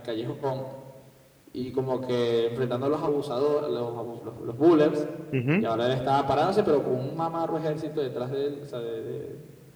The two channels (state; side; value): identical; both; correlation 1.00